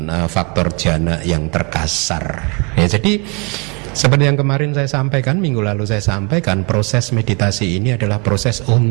faktor jana yang terkasar ya. Jadi seperti yang kemarin saya sampaikan, minggu lalu saya sampaikan, proses meditasi ini adalah proses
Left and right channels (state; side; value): quieter; left; 32.6 dB